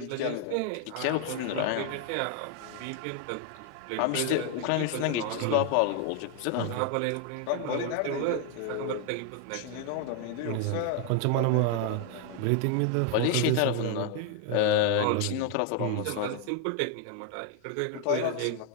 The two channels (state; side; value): different; both; correlation 0.01